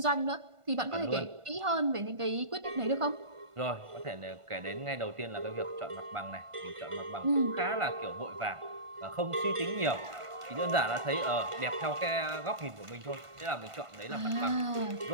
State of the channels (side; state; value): left; late; 1.5 ms